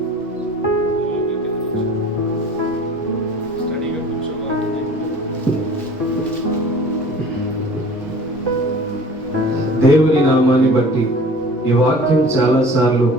దేవుని నామాన్ని బట్టి ఈ వాక్యం చాలాసార్లు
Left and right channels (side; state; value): both; normal; correlation 0.44